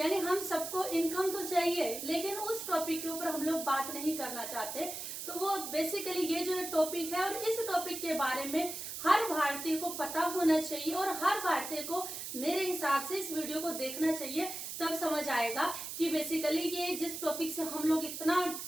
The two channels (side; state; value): right; noise; hiss, 7 dB below the sound